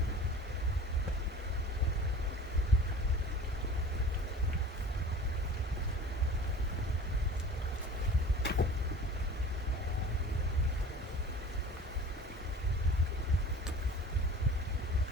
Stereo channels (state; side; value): normal; both; correlation 0.41